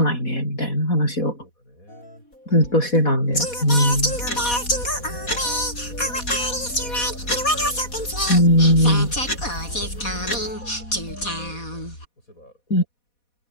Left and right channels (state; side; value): late; right; 4.1 ms